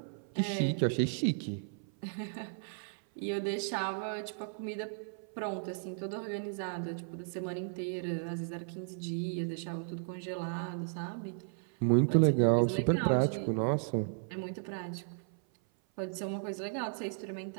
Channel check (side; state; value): left; silent; 55 dB below the other